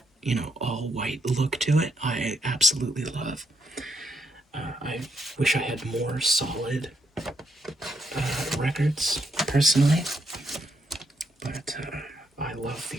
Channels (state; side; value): normal; both; correlation 0.77